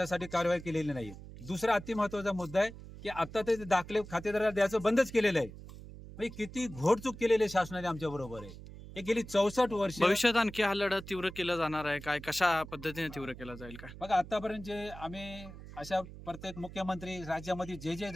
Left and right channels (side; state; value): right; noise; hum, 14 dB below the sound